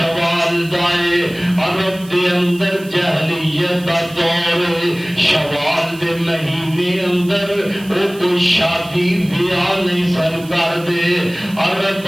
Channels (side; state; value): right; noise; hiss, 21 dB below the sound